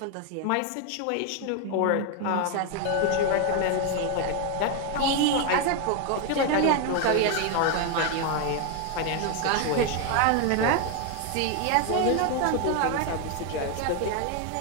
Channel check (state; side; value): different; both; correlation 0.01